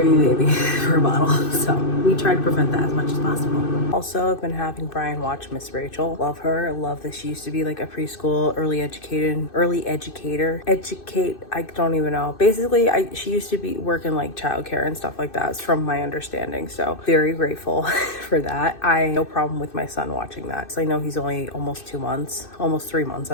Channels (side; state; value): right; late; 2.6 ms